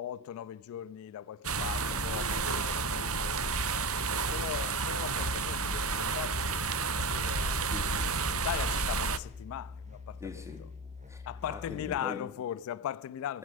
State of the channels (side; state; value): both; normal; correlation 0.21